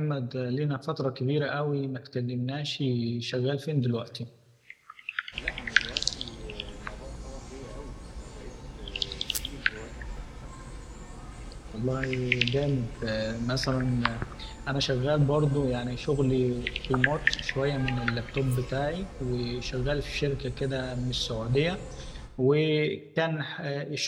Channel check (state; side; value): identical; both; correlation 1.00